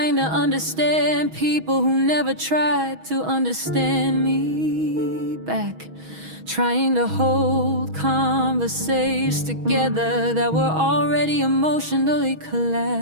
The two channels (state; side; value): late; left; 6.2 ms